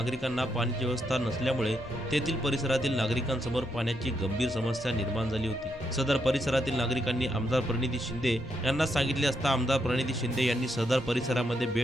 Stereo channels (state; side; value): normal; both; correlation 0.80